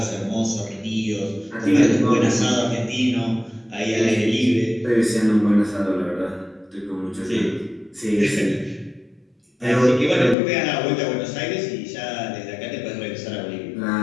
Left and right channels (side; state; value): right; drops out; at 10.4 s